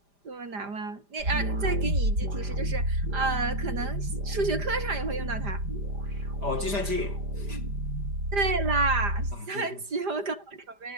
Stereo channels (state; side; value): late; left; 5.0 ms